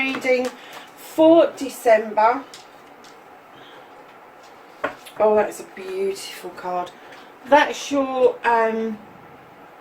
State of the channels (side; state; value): both; identical; correlation 1.00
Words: for December. Oh, that's a beautiful card. That's your current